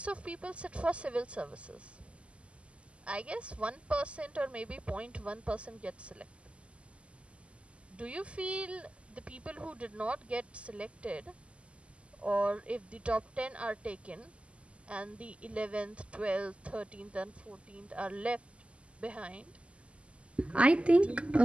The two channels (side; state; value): left; late; 0.057 ms